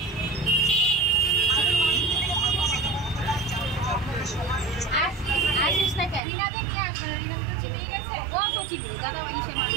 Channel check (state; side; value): drops out; left; at 6.2 s